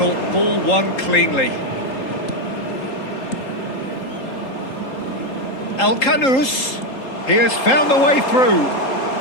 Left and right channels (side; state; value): right; late; 3.8 ms